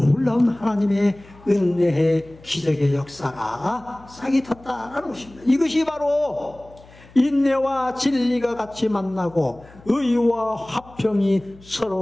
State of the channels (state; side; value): noise; left; hum, 23 dB below the sound